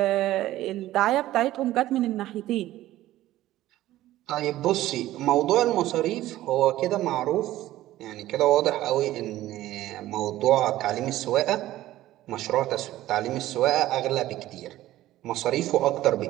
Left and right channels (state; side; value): quieter; left; 15.1 dB